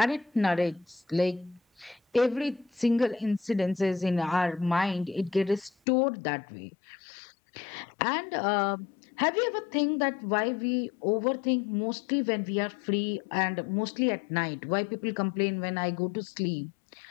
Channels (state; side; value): drops out; right; at 5.7 s